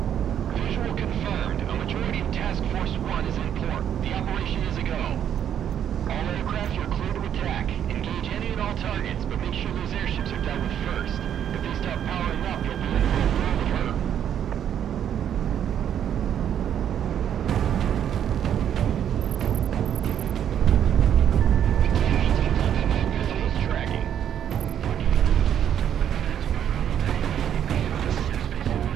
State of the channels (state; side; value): quieter; left; 9.5 dB